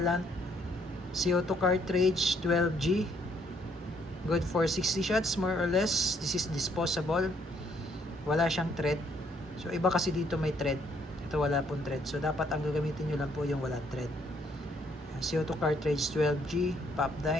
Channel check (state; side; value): normal; both; correlation 0.67